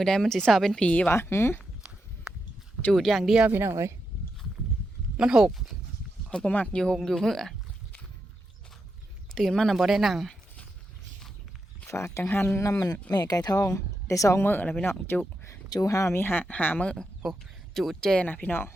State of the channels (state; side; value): normal; both; correlation 0.86